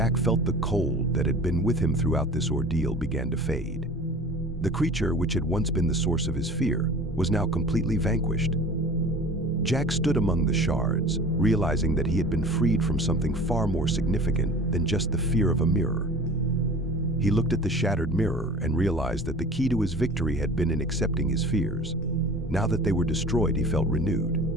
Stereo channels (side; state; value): both; normal; correlation 0.41